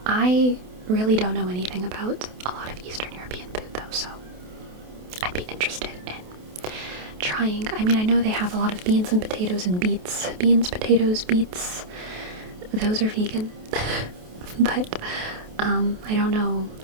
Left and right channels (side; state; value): left; late; 28 ms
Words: I really don't know anything about a lot of Eastern European food, though, so I'd be interested in trying. I mean, I know they have a lot of beans and potatoes and beets. Beans, potatoes, beets, those are vegan. But, I don't know.